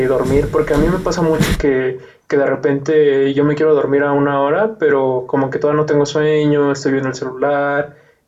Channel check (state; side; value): identical; both; correlation 1.00